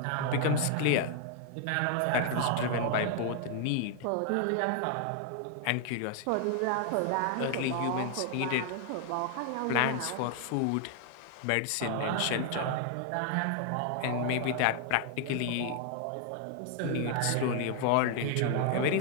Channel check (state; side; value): different; both; correlation 0.00